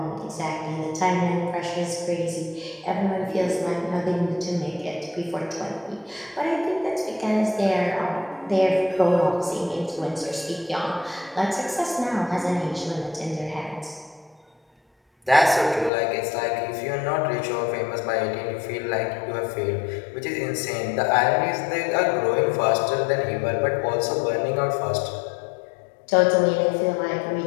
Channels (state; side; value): drops out; right; at 15.9 s